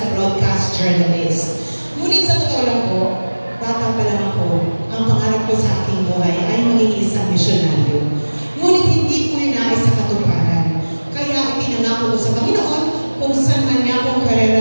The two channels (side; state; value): both; inverted; correlation -1.00